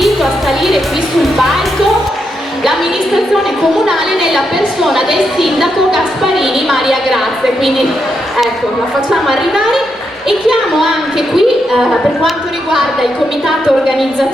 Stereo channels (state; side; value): normal; both; correlation 0.82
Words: a salire qui sul palco. L'amministrazione comunale nella persona del sindaco Gasparini Maria Grazia, quindi ecco, la facciamo arrivare e chiamo anche qui per quanto riguarda il comitato